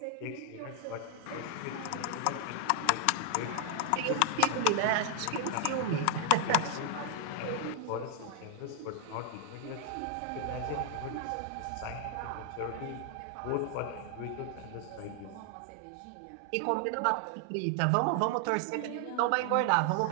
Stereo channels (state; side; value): different; both; correlation 0.00